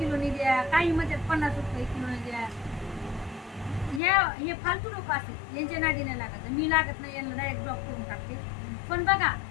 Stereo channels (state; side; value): drops out; right; at 4.0 s